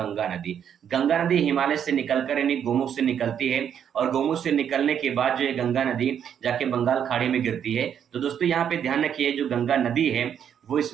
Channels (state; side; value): quieter; left; 8.7 dB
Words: नदी। गंगा नदी हिमालय से निकलकर यानी गोमुख से निकलती है और गोमुख से निकलने के बाद जो है गंगा नदी जाके बंगाल खाड़ी में गिरती है। तो दोस्तों यहाँ पे ध्यान रखिए, जो गंगा नदी है वो